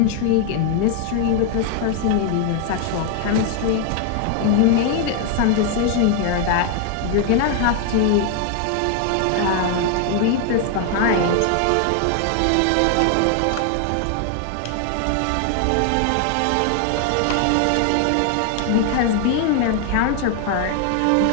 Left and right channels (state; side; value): different; both; correlation 0.00